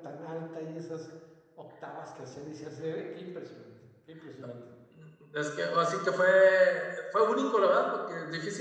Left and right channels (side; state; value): both; identical; correlation 1.00